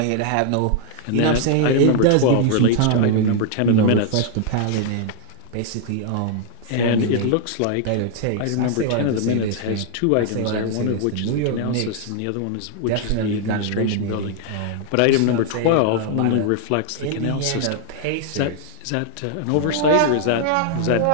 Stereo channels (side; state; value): both; different; correlation 0.00